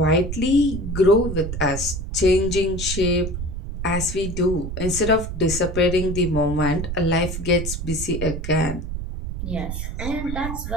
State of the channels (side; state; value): right; noise; rumble, 5 dB below the sound